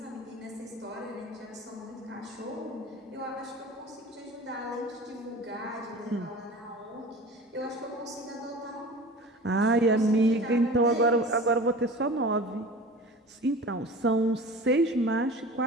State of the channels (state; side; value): normal; both; correlation 0.38